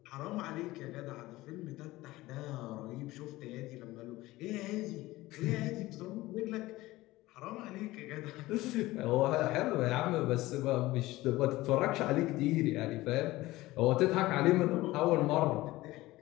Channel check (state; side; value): quieter; right; 18.3 dB